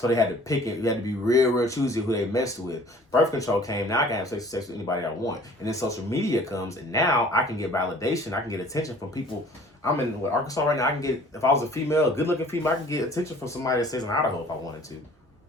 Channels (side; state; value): both; normal; correlation 0.51